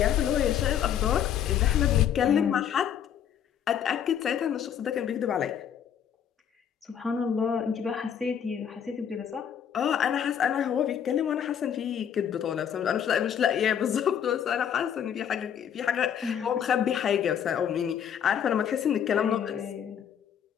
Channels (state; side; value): quieter; right; 8.8 dB